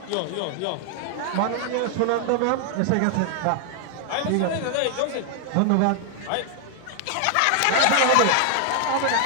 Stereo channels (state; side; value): different; both; correlation 0.00